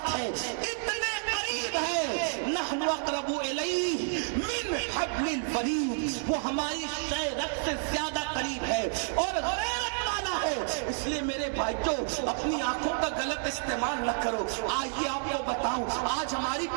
ہے، اتنے قریب ہے. نحن اقرب الیہ من حبل الورید، وہ ہماری شہرت سے زیادہ قریب ہے اور غیرت والا ہے. اس لیے میرے بھائیوں اپنی آنکھوں کا غلط استعمال نہ کرو. آئیے آپ کو بتاؤں، آج ہماری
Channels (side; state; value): left; silent; 58 dB below the other